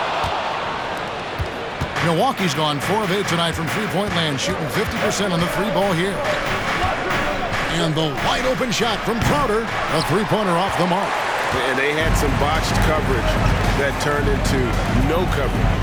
Milwaukee's gone 4 of 8 tonight from three-point land, shooting 50% on the three ball here. And the wide open shot from Crowder, a three-pointer off the mark. And they had some botched coverage that turned into no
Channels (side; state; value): both; identical; correlation 1.00